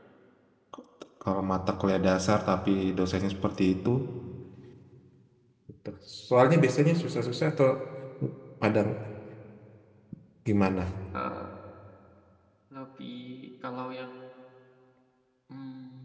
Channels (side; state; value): both; identical; correlation 1.00